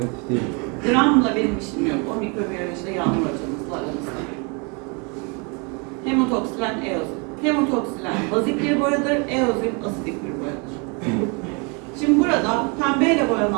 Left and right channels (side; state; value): left; quieter; 32.7 dB